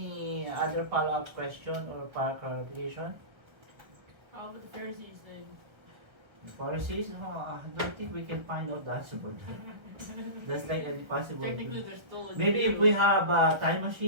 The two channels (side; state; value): left; late; 1.5 ms